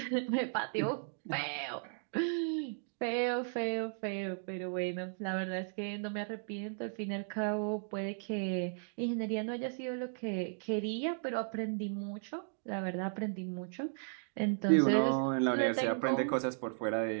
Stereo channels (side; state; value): left; silent; digital silence